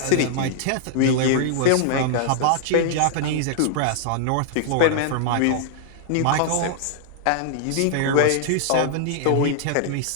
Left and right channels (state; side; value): different; both; correlation -0.01